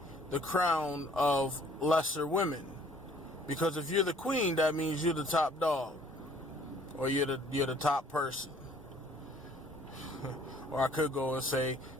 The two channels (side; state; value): both; normal; correlation 0.57